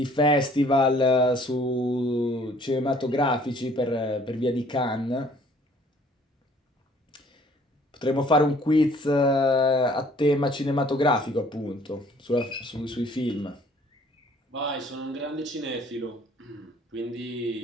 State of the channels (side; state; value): both; normal; correlation 0.57